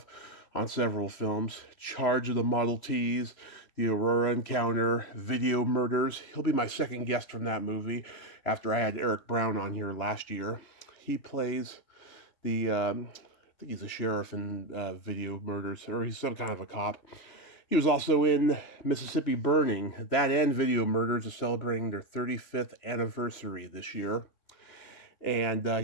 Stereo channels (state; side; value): late; right; 3.1 ms